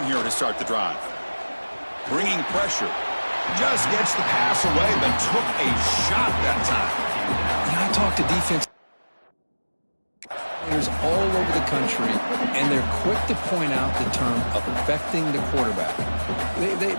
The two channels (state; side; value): inverted; both; correlation -1.00